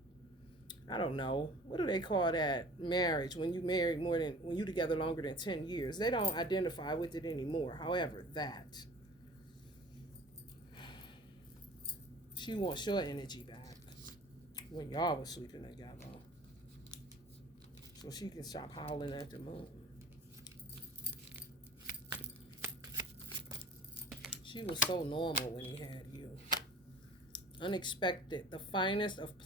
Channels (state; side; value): normal; both; correlation 0.43